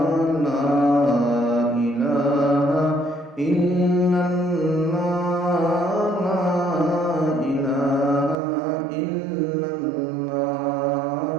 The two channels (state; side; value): drops out; left; at 8.3 s